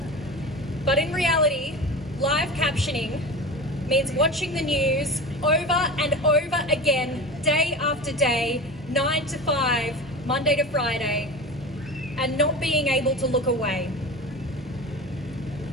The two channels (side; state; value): both; normal; correlation 0.30